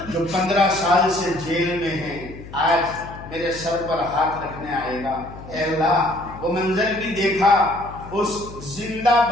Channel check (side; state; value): left; noise; hum, 15 dB below the sound